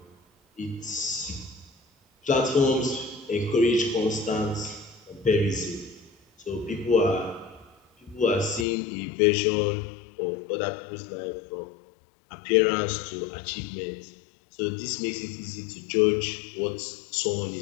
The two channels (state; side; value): drops out; right; at 8.7 s